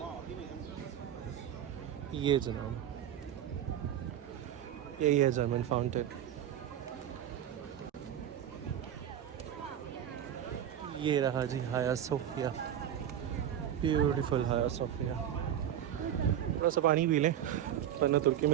ये जनाब यही है German fountain. ये रहा जी हाया सोफिया. ब्यूटीफुल हाया सोफिया. थोड़ा सा पानी पी लें वरना तुर्की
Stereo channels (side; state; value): left; quieter; 10.4 dB